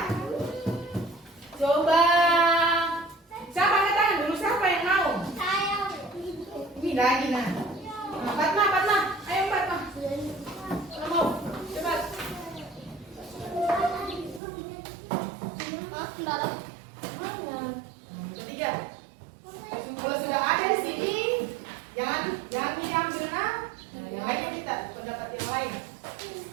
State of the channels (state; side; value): drops out; left; at 14.4 s